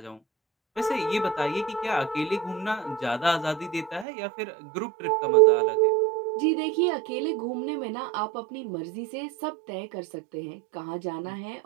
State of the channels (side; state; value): left; drops out; at 4.0 s